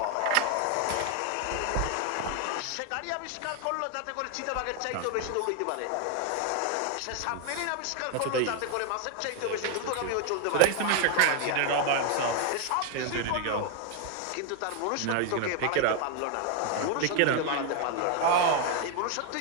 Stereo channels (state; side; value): different; both; correlation 0.01